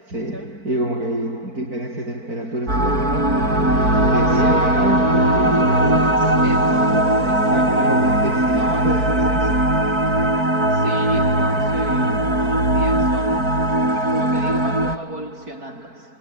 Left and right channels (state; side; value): late; left; 4.5 ms